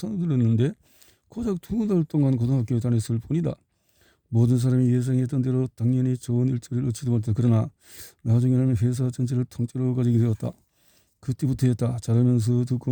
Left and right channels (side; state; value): both; identical; correlation 1.00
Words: 들었는데 고작 2달 동안 고등학교에 다녔을 뿐이다. 모든 사람이 예상했던 대로 당연히 좋은 일자리를 얻지도 못했다. 그러나 나중에는 회사 전체를 통째로 가지게 되었다. 그때부터였다. 자라면서